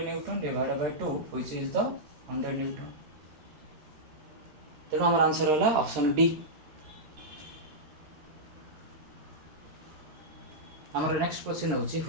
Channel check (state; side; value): late; left; 13 ms